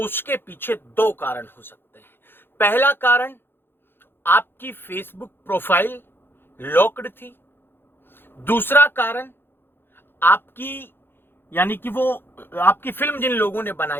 पीछे 2 कारण हो सकते हैं। पहला कारण, आपकी फेसबुक प्रोफाइल लॉक्ड थी। दूसरा कारण, आपकी यानी कि वो आपकी फिल्म जिन लोगों ने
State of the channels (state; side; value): late; right; 0.10 ms